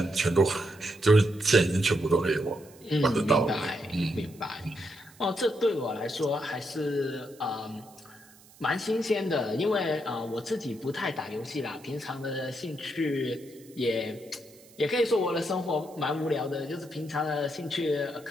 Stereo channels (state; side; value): noise; right; hiss, 25 dB below the sound